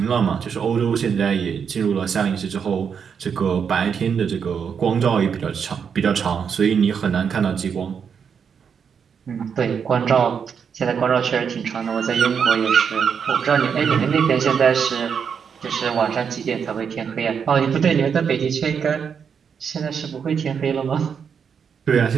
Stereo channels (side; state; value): left; quieter; 6.9 dB